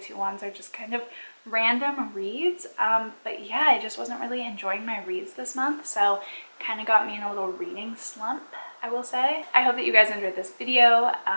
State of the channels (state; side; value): inverted; both; correlation -1.00